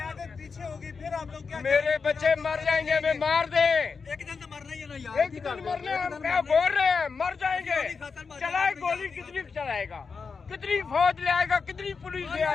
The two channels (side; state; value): right; quieter; 5.2 dB